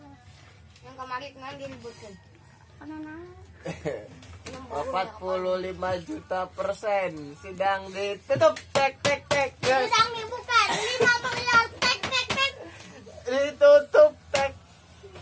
Yang kemarin kemarin diributkan. 45% sidang ditutup. Tek tek tek. Sidang dibuka 5 miliar. Tek tek tek. Ditutup tek.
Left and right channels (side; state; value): both; identical; correlation 1.00